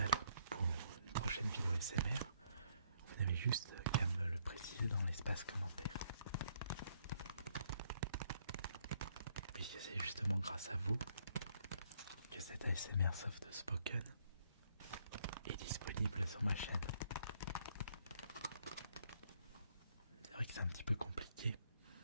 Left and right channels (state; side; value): inverted; both; correlation -0.69